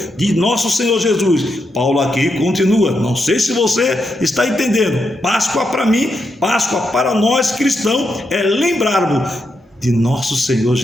de nosso Senhor Jesus. Paulo aqui continua, não sei se você está entendendo. Páscoa para mim, Páscoa para nós cristãos, é lembrarmos de nosso Senhor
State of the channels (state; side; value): normal; both; correlation 0.83